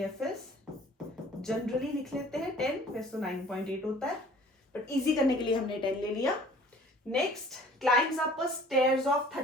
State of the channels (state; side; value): normal; both; correlation 0.51